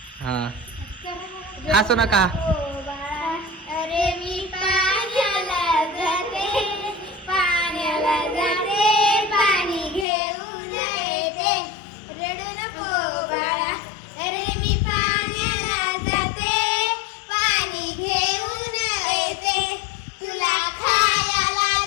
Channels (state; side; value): drops out; right; at 10.1 s